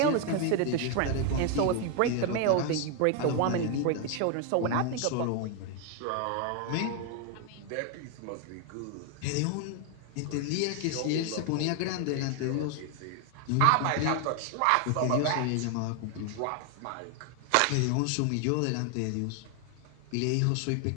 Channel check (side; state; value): both; different; correlation 0.01